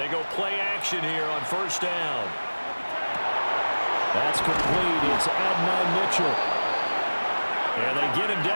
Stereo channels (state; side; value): inverted; both; correlation -1.00